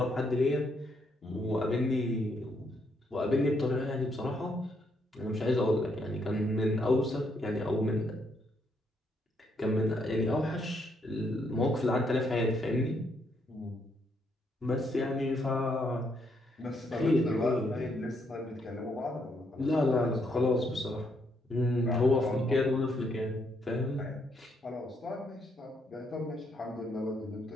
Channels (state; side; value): normal; both; correlation 0.74